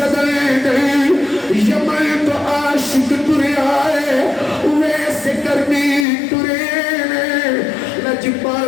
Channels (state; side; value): drops out; right; at 6.1 s